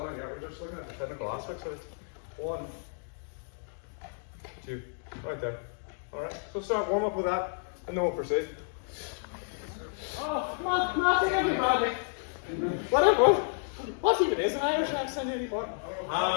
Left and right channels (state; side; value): silent; right; 57 dB below the other